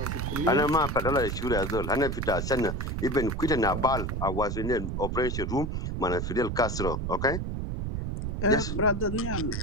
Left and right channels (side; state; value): right; noise; rumble, 3 dB below the sound